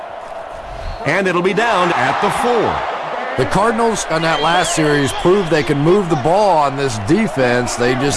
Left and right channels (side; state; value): both; identical; correlation 1.00